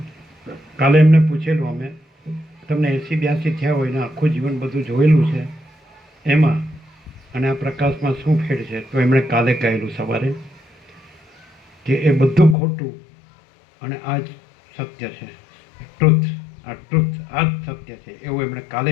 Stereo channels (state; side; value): drops out; right; at 12.6 s